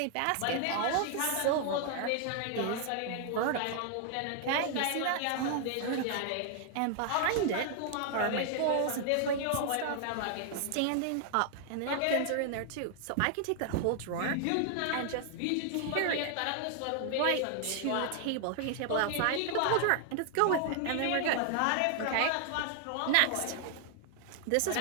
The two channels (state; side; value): different; both; correlation 0.00